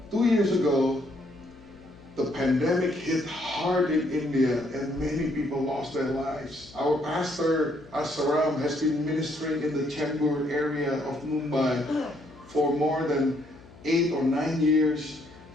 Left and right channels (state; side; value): noise; left; hum, 22 dB below the sound